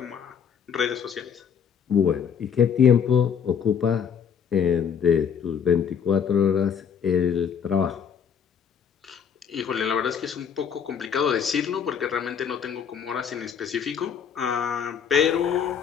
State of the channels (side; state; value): right; quieter; 7.5 dB